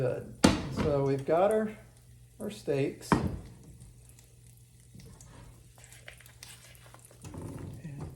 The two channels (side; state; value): both; identical; correlation 1.00